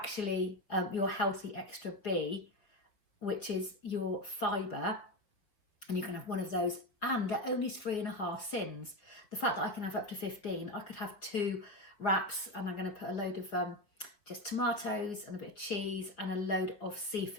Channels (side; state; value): right; late; 5.0 ms